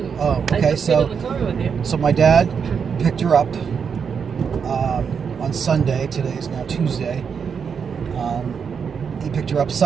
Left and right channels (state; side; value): quieter; left; 6.5 dB